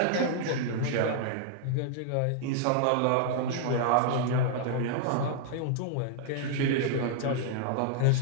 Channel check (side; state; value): both; different; correlation -0.01